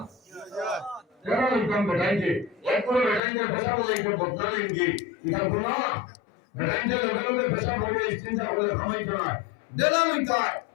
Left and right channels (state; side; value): drops out; right; at 3.2 s